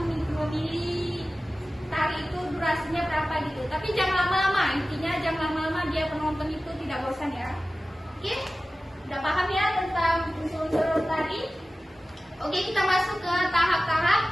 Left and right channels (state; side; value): normal; both; correlation 0.96